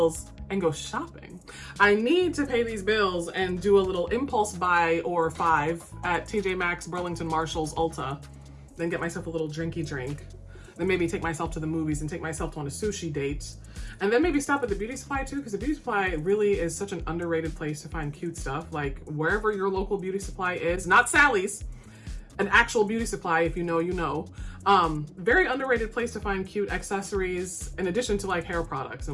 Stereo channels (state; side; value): identical; both; correlation 1.00